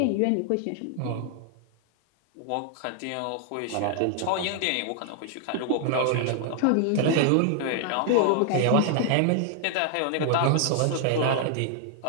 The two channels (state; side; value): different; both; correlation -0.01